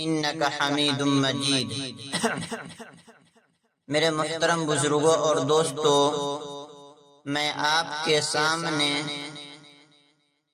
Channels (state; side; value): identical; both; correlation 1.00